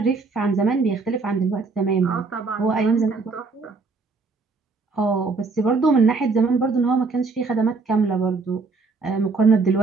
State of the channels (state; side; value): quieter; left; 4.2 dB